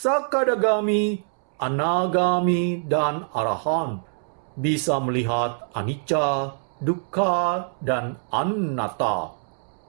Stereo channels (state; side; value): silent; left; 62 dB below the other